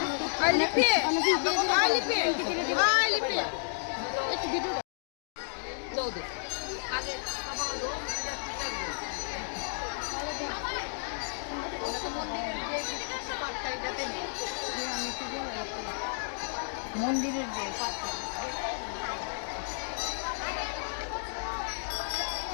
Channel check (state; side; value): silent; right; digital silence